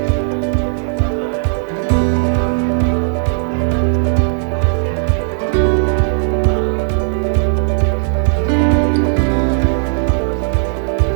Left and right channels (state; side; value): silent; left; digital silence